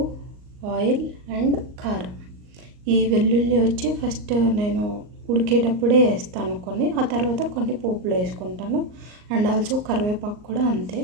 ఆయిల్ అండ్ కారం. ఈ వెల్లుల్లి వచ్చి ఫస్ట్ నేను ఉడికేటప్పుడే వేస్తాను కొన్ని, ఆ తర్వాత కొన్ని పోపులో వేసుకుంటాను. అండ్ ఆల్సో కరివేపాకు కూడా అంతే.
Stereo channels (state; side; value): late; left; 38 ms